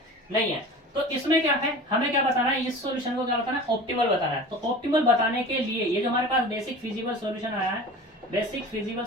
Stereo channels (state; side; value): normal; both; correlation 0.37